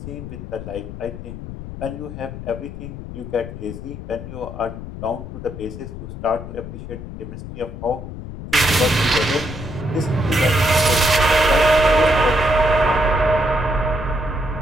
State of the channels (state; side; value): noise; left; rumble, 10 dB below the sound